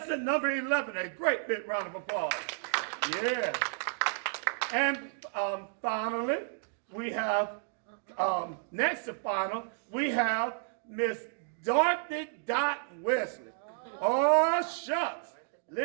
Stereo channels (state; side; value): silent; left; digital silence